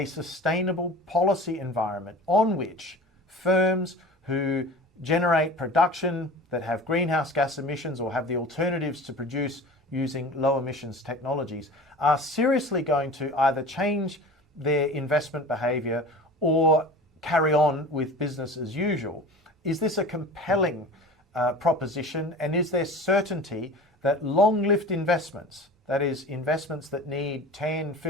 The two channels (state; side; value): normal; both; correlation 0.38